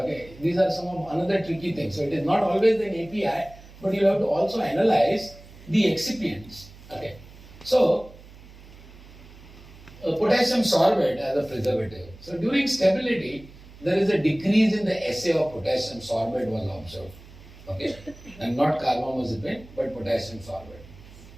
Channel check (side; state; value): right; noise; hum, 20 dB below the sound